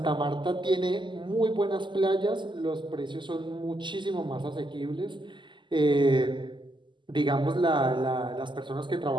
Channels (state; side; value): late; left; 0.23 ms